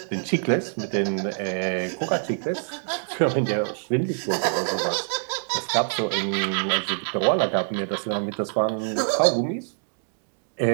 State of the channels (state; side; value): silent; left; digital silence